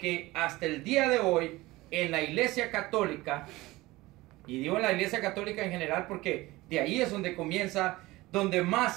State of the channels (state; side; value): quieter; left; 19.7 dB